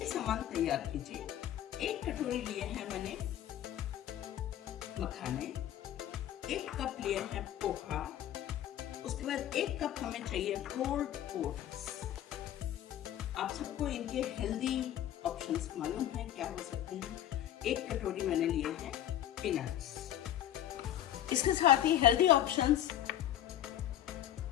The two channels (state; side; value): quieter; right; 11.8 dB